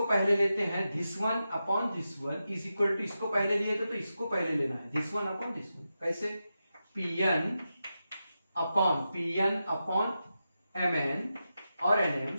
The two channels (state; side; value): inverted; both; correlation -0.90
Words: पहले लेते हैं, this one upon this one is equal to, इसको पहले लिए थे तो इसको पहले लेना है, this one upon this one. कैसे? Pn upon Mn और